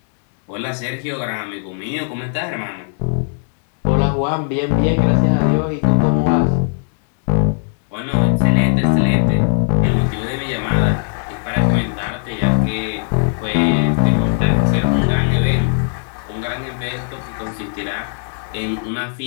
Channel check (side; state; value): right; silent; digital silence